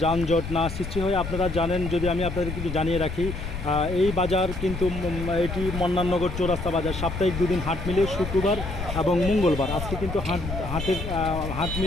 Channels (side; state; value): left; noise; rumble, 6 dB below the sound